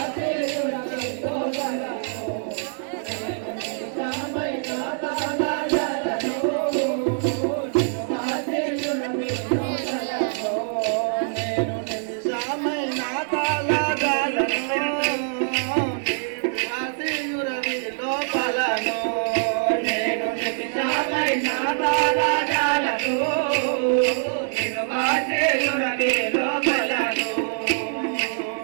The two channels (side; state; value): left; silent; digital silence